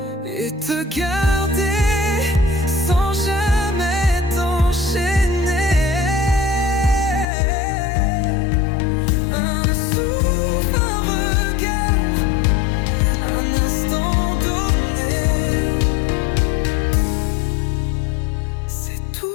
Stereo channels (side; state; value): right; drops out; at 7.2 s